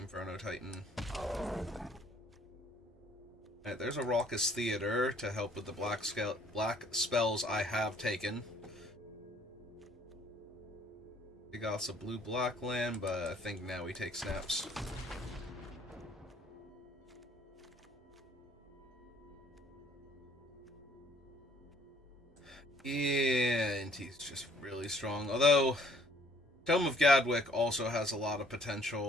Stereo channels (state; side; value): normal; both; correlation 0.60